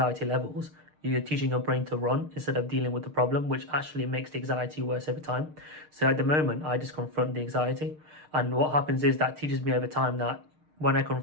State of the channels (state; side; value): late; left; 6.6 ms